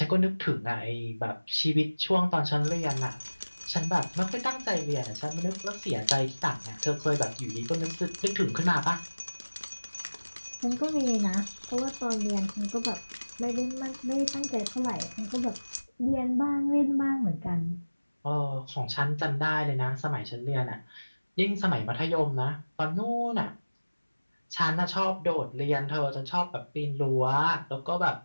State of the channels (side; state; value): both; inverted; correlation -1.00